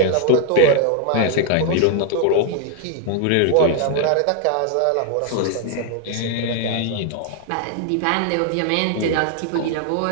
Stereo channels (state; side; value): different; both; correlation 0.00